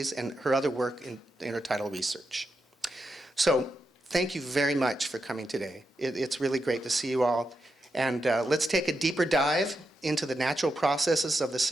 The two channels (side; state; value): both; normal; correlation 0.86